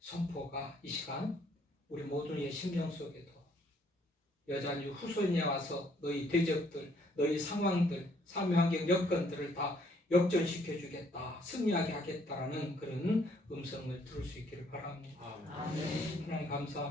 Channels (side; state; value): both; normal; correlation 0.66